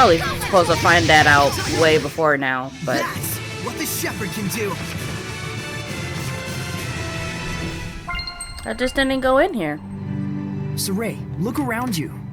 supposed to find that out way before now, but that's what the shepherd can do. I just didn't go in here. Saray, look around you.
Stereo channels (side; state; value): both; identical; correlation 1.00